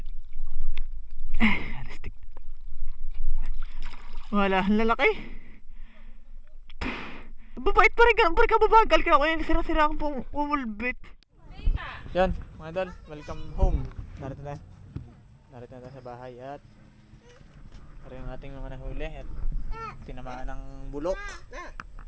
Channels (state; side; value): identical; both; correlation 1.00